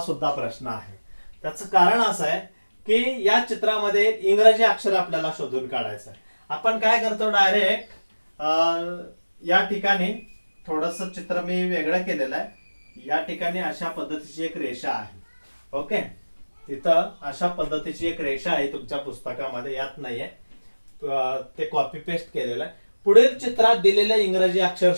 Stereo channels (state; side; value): inverted; both; correlation -1.00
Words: प्रश्न आहे. त्याचं कारण असं आहे की या चित्रामध्ये इंग्रजी अक्षर आपल्याला शोधून काढायचं आहे. आपण काय करतो, डायरेक्ट या ठिकाणी थोडस चित्र मी वेगळं केलेलं आहे. या ठिकाणी अशा पद्धतीची एक रेषा आहे. ओके. तिथं अशा पद्धतीची एक रेषा आहे तुमच्या पुस्तकामध्ये, यात नाहीये, ते कॉपी पेस्ट केलेलं आहे. पुढील चित्रात दिलेले इंग्रजी अक्षर